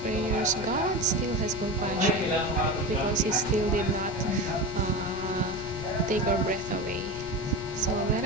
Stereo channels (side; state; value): left; noise; rumble, 14 dB below the sound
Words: prayers. God still has compassion because He still did not take our breath away. So let